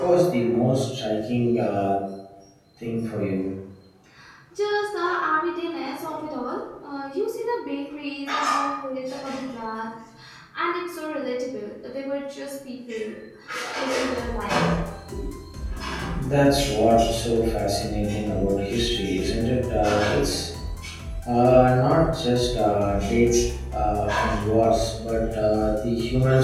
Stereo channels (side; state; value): both; identical; correlation 1.00